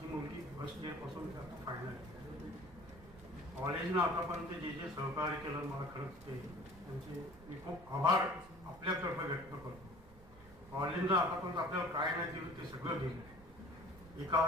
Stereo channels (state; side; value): noise; right; rumble, 20 dB below the sound